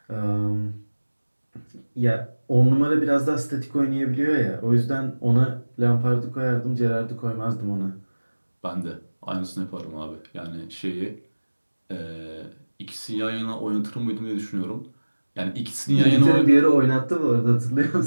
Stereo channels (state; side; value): inverted; both; correlation -1.00